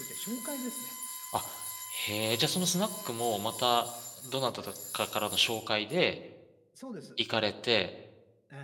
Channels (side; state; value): both; identical; correlation 1.00